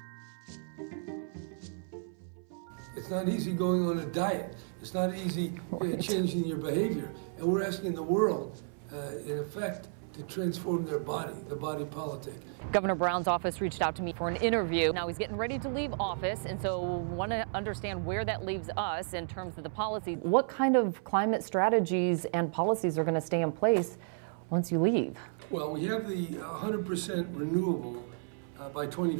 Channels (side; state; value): left; silent; 56 dB below the other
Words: It's not easy going on a diet. It's not easy changing your behavior. And we're asking the world, in effect, to transform their body, the body politic. Governor Brown's office reached out to me for an interview. Now he's getting ready to leave office, and so want to understand where that leaves us in terms of the policy. What kind of climate strategies and policies are going to stay in place once you leave? Well, we have the 100% renewable by